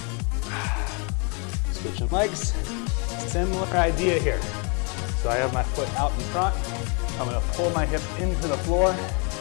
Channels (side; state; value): right; quieter; 35.1 dB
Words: Switching legs, similar idea here. So I have my foot out in front. I'm gonna pull my hip into the floor.